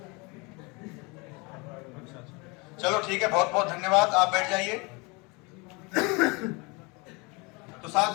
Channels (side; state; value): right; quieter; 28.3 dB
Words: चलो ठीक है, बहुत बहुत धन्यवाद, आप बैठ जाइए। तो